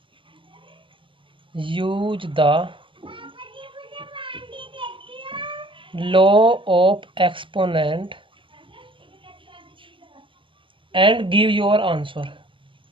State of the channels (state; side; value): late; left; 0.25 ms